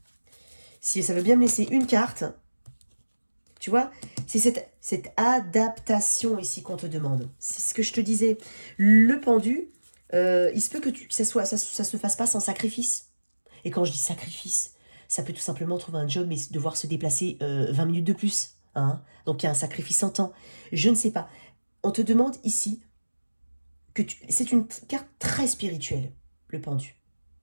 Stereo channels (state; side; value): inverted; both; correlation -1.00